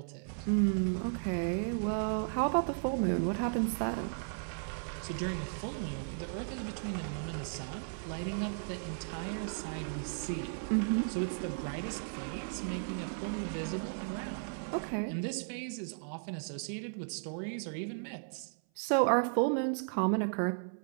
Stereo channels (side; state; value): left; silent; 54 dB below the other